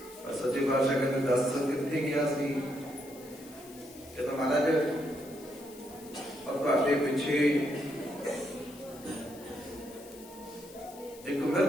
ਸੱਚੇ ਪਾਤਸ਼ਾਹ ਕਹਿੰਦੇ ਦੱਸ ਕਿੱਥੇ ਗਿਆ ਸੀ? ਕਹਿੰਦਾ ਮਹਾਰਾਜ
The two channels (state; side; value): noise; left; hiss, 20 dB below the sound